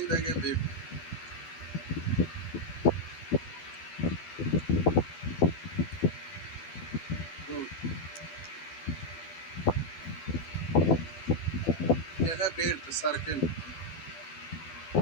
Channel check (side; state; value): right; late; 12 ms